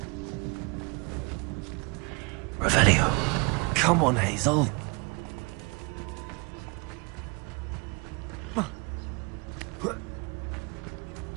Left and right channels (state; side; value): quieter; left; 30.0 dB